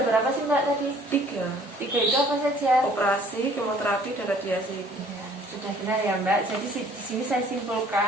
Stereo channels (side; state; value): both; normal; correlation 0.56